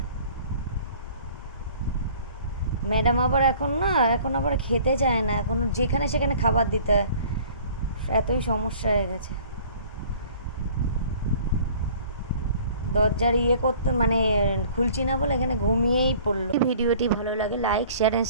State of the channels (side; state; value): both; inverted; correlation -0.50